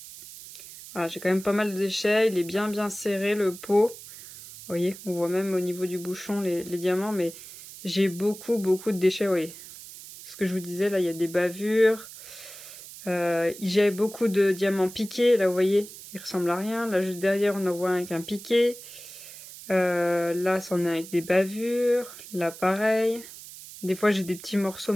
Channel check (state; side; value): noise; right; hiss, 15 dB below the sound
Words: Voilà, j'ai quand même pas mal de déchets. Il est bien serré le pot. Vous voyez, on voit même au niveau du bouchon les diamants, mais j'ai beaucoup de déchets, vous voyez. Ce que je vous disais, là, il y a des bavures. J'ai beaucoup de diamants piqués, là, vous voyez, il ressemble à rien. Là, juste derrière, on en voit un avec un piqué. Là, c'en est avec des bavures. Là, pareil. Des fois, j'ai des petits morceaux,